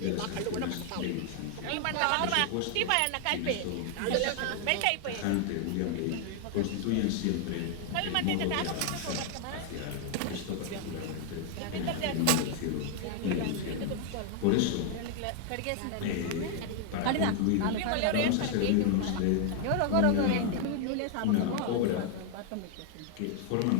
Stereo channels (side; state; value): both; different; correlation 0.00